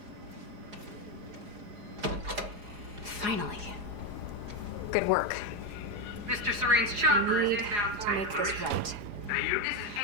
Finally. Good work. Mr. Serene's I chopper is need inbound to for make this exploration. right. This is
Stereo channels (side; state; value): left; late; 4.8 ms